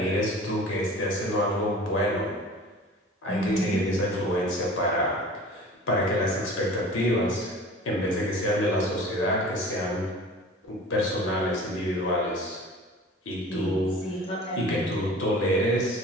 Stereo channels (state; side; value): normal; both; correlation 0.42